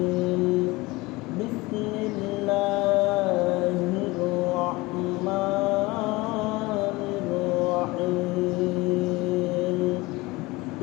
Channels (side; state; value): right; quieter; 22.0 dB